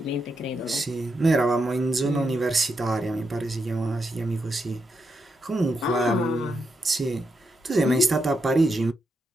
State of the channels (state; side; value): normal; both; correlation 0.83